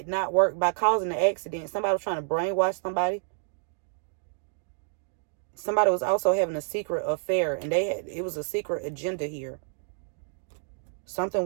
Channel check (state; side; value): silent; left; digital silence